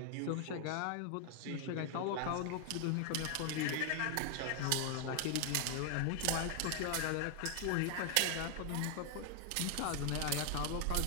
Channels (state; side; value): different; both; correlation 0.00